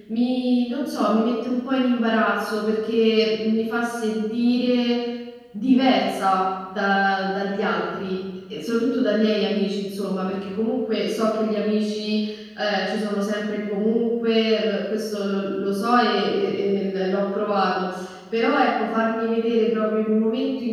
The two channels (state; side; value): identical; both; correlation 1.00